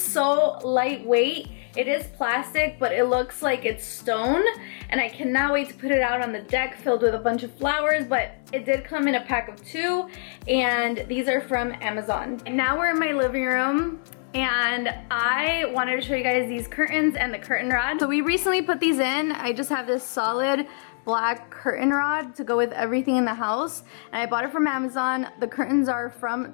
lightweight. It is plastic, but it looks like it's stone, and I cannot wait to put it out on the deck filled with a bunch of flowers. But it did come in a pack of 2, and these are from Amazon. And now we're in my living room, and I wanted to show you guys these curtains and the curtain rod. So we recently put these in. I just have this solid black curtain rod to go with everything in the house, and I bought it from Amazon. The curtains are from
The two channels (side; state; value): right; silent; digital silence